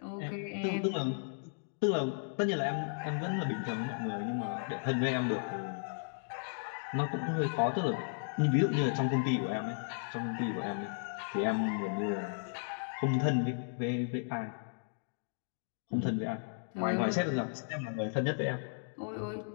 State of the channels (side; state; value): right; silent; digital silence